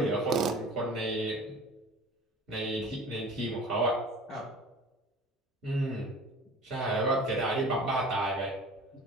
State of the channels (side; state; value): both; normal; correlation 0.42